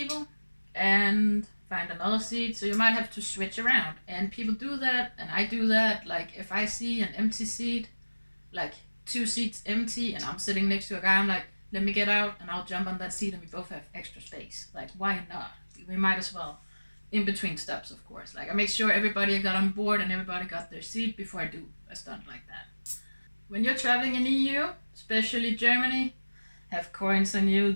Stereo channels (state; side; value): inverted; both; correlation -1.00